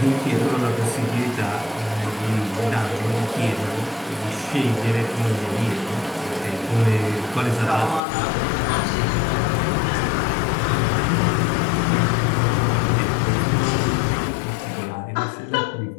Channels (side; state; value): right; drops out; at 8.0 s